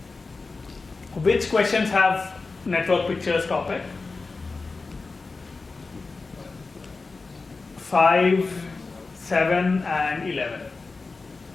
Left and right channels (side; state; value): right; quieter; 3.9 dB